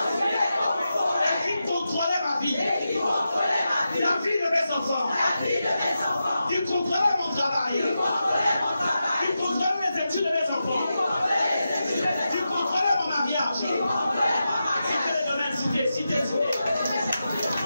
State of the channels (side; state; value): both; inverted; correlation -0.89